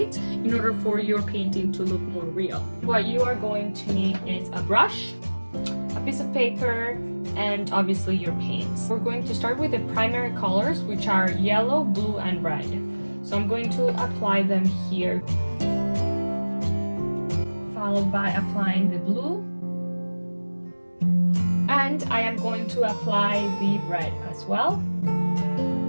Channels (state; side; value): inverted; both; correlation -1.00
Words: in order for your painting to look more real. What you are going to need is a brush, a piece of paper, and obviously your paints. We're going to start with the primary colors, which are yellow, blue, and red. So I'm going to apply them here, followed by applying the blue, and I am going to apply the red as well.